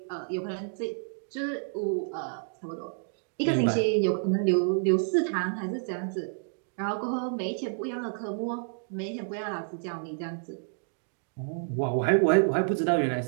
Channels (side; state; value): left; silent; digital silence